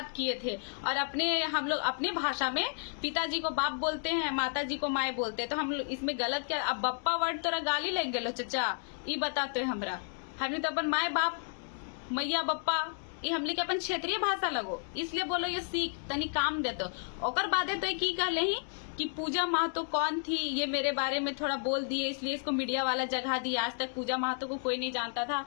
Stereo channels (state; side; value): silent; right; 56 dB below the other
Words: किए थे, और हम लोग अपने भाषा में पिताजी को बाप बोलते हैं, माताजी को माए बोलते हैं, तो हम लोग इसमें गलत क्या। अब बप्पा वर्ड तोरा गाली लग गलो चचा, ये बताते हमरा हमने तो अपन माए बाप मैया बप्पा ये हमले के अपन क्षेत्रीय भाषा लगो, इसलिए बोलो ये सीख तनी काम देतो। ओकर बादे तो की कहले ही कि पूजा महतो कौन थी ये मेरे बारे में थोड़ा बोल दिए, इसलिए इसको मीडिया वाला जगह दी। आज तक पूजा महतो को कोई नहीं जानता था।